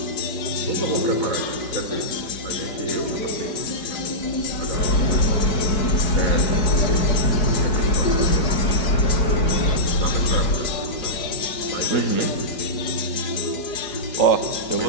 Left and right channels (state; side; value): late; right; 4.9 ms